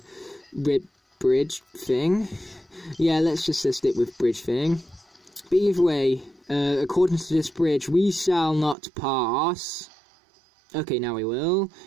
bridge thing. Yeah, let's just stick with bridge thing. But either way, according to this bridge, we shall not pass. Okay, now we will.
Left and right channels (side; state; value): left; drops out; at 8.8 s